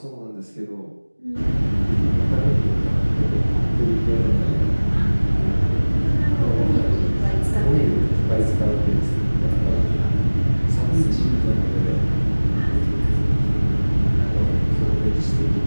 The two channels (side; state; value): both; inverted; correlation -1.00